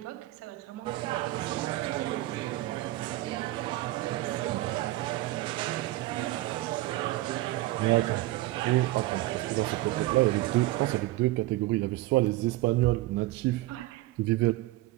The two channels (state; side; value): quieter; left; 17.6 dB